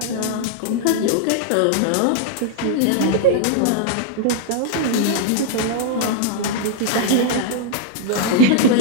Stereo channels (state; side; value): different; both; correlation -0.01